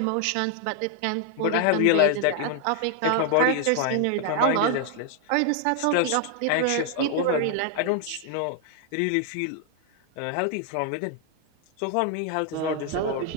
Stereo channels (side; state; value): both; different; correlation 0.00